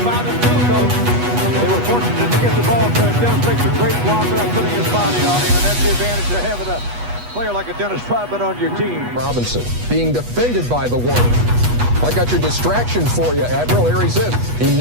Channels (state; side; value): late; left; 8.2 ms